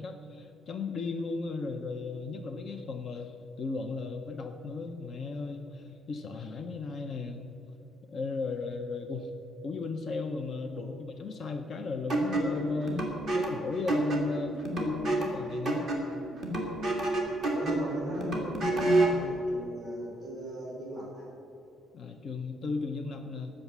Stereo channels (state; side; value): normal; both; correlation 0.73